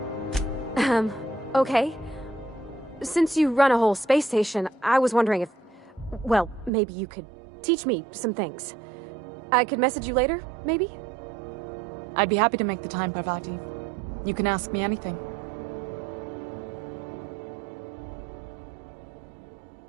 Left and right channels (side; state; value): left; drops out; at 6.7 s